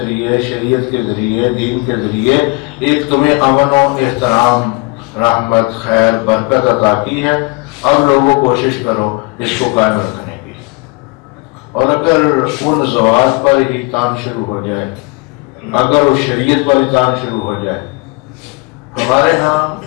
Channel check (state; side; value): quieter; right; 27.4 dB